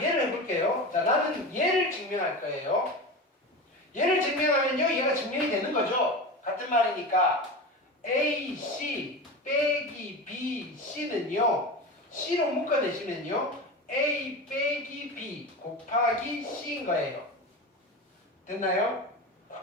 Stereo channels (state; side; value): normal; both; correlation 0.26